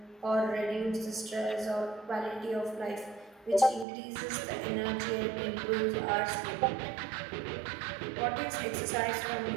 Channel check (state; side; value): drops out; left; at 3.9 s